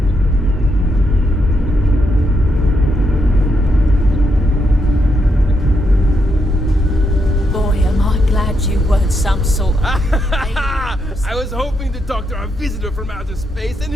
Boy, am I glad you weren't some sort of... I was hoping to talk to our visitor from outer space, and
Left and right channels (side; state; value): both; normal; correlation 0.80